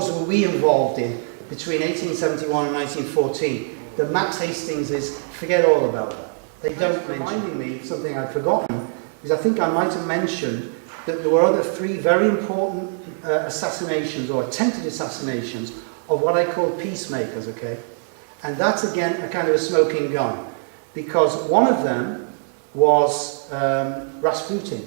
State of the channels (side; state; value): left; silent; 64 dB below the other